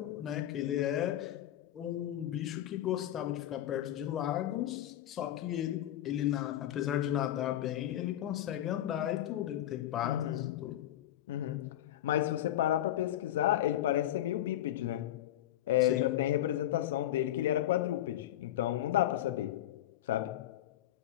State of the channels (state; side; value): quieter; right; 12.7 dB